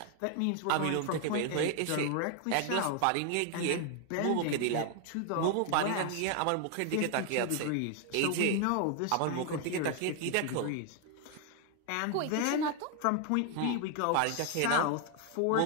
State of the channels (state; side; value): different; both; correlation 0.00